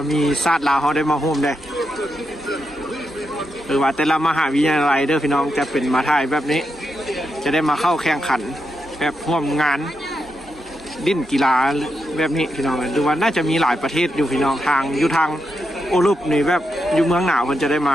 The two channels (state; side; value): normal; both; correlation 0.85